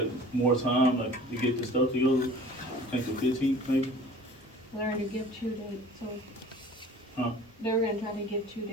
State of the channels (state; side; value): normal; both; correlation 0.46